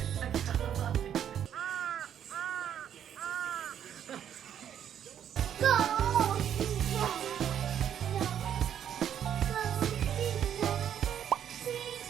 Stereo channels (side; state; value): left; quieter; 9.5 dB